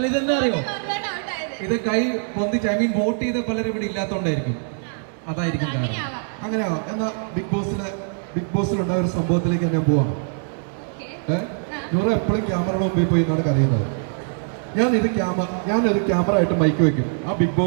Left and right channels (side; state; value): left; silent; digital silence